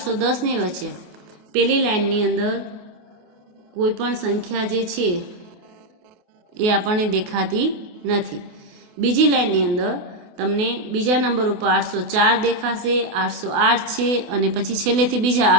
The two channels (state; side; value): late; left; 28 ms